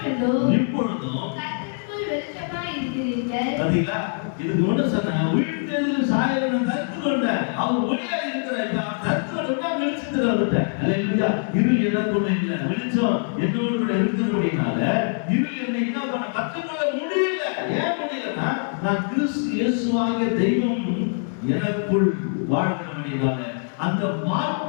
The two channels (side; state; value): right; silent; 63 dB below the other